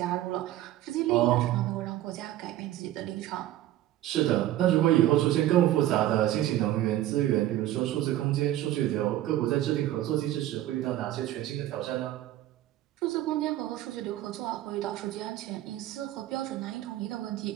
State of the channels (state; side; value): quieter; left; 13.9 dB